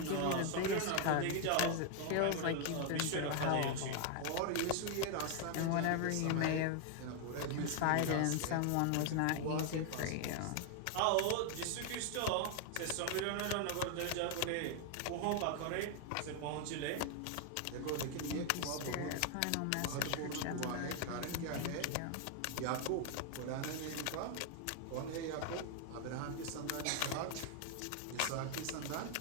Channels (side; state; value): both; different; correlation 0.00